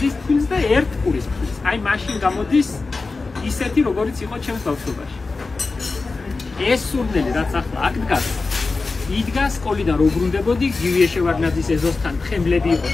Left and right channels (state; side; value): quieter; right; 3.9 dB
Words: ფქვილს და 1 ყურის ფქვილს. აი მაშინ გამოდის ისეთი, როგორიც იყო ჩემს ბავშვობაში. ეს სურნელი, რაც ახლა აქ დგას, იდგას სკოლიდან რო ბრუნდებოდი, გივიე შევარდნაძის ეზოსთან ხემლები იყო